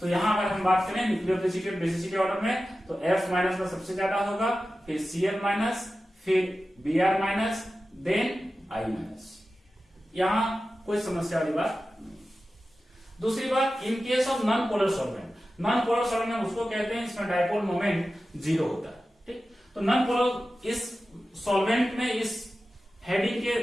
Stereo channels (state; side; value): normal; both; correlation 0.94